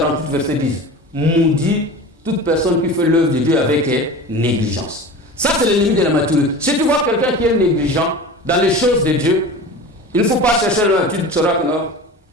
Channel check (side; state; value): both; normal; correlation 0.34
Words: verset 10. Maudit toute personne qui fait l'œuvre de Dieu avec négligence. Ça c'est l'ennemi de la maturité. Si tu vois quelqu'un qui est négligent dans les choses de Dieu, il ne faut pas chercher là, tu sauras que non,